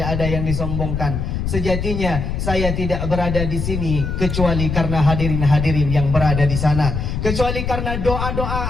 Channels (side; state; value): left; noise; rumble, 3 dB below the sound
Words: ada yang disombongkan. Sejatinya saya tidak berada di sini kecuali karena hadirin-hadirin yang berada di sana, kecuali karena